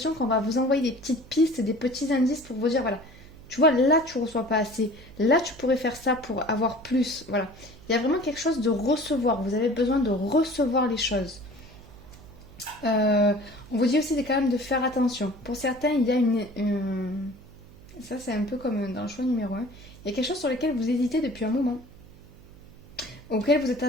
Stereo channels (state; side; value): noise; right; hum, 21 dB below the sound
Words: qu'on va vous envoyer des petites pistes, des petits indices pour vous dire, voilà, tu vois, là, tu ne reçois pas assez. Là, tu pourrais faire ça pour avoir plus. Voilà. Il y a vraiment quelque chose de recevoir. Vous avez besoin de recevoir les choses. On vous dit aussi quand même de faire attention. Pour certains, il y a ça, c'est un peu comme dans le choix numéro 1. Il y a quelque chose sur lequel vous hésitez depuis un moment. Auquel vous êtes